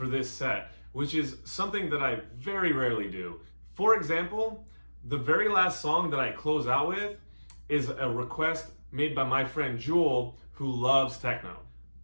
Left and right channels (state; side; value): inverted; both; correlation -1.00